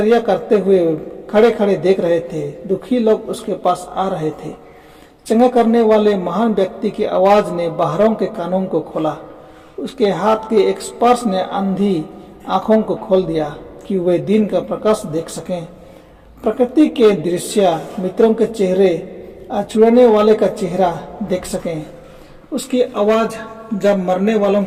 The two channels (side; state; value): both; identical; correlation 1.00